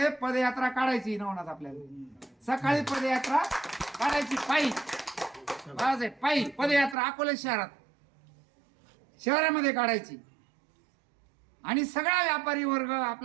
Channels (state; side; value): drops out; left; at 7.0 s